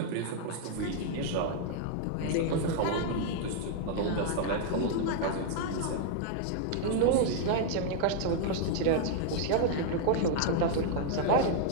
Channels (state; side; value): different; both; correlation -0.01